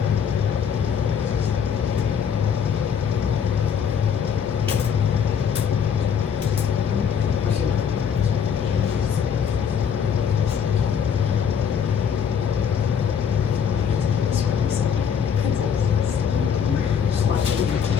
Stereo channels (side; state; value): right; quieter; 7.5 dB